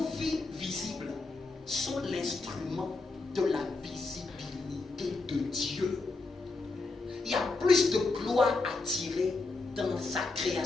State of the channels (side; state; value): right; quieter; 3.6 dB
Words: vies visibles sont l'instrument de la visibilité de Dieu. Il y a plus de gloire à tirer dans sa